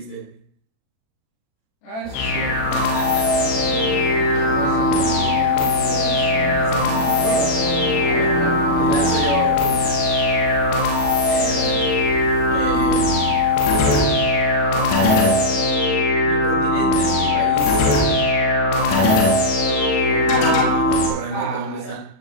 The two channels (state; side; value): late; right; 37 ms